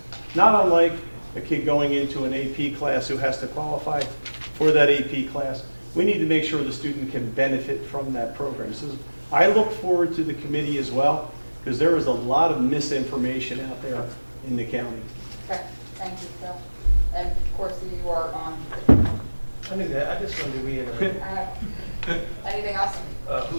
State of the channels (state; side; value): inverted; both; correlation -1.00